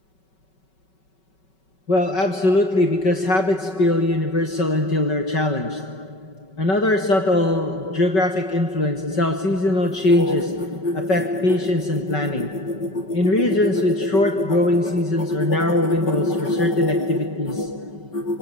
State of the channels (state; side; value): late; right; 5.3 ms